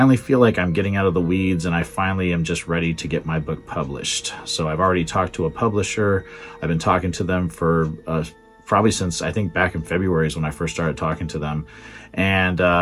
feel like I'm getting out of the weeds, and I finally am just ready to get my book published. So I've already talked to a publisher. I've been talking to them for probably since, I think, back in February is when I first started talking to them,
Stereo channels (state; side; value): identical; both; correlation 1.00